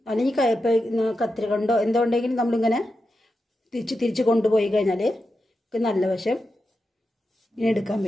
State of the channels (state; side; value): normal; both; correlation 0.89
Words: അല്ലെങ്കിൽ കത്തിരി കൊണ്ടോ എന്തോ ഉണ്ടെങ്കിലും നമ്മളിങ്ങനെ തിരിച്ച് കൊണ്ടുപോയി കഴിഞ്ഞാൽ നല്ല വശം ഇങ്ങനെ എടുക്കാൻ